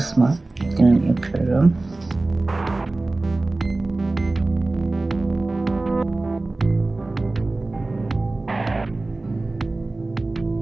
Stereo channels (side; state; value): left; quieter; 3.1 dB